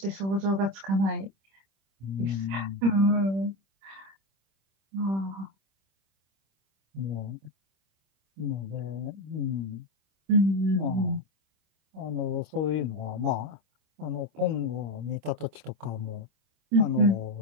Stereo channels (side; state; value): left; late; 26 ms